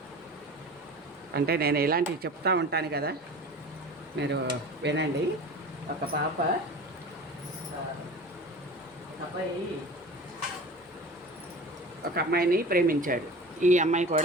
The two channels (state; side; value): normal; both; correlation 0.37